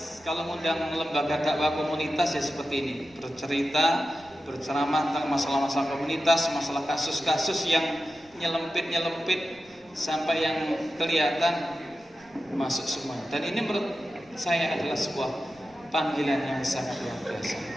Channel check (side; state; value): right; noise; rumble, 30 dB below the sound